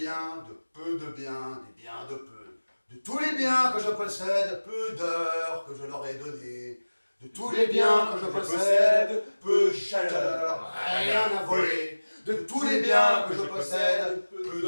de peu de biens, des biens de peu. De tous les biens que je possède, peu d'heures que je leur ai données. De tous les biens que je possède, peu de chaleur, rien à voler. De tous les biens que je possède, peu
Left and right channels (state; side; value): inverted; both; correlation -1.00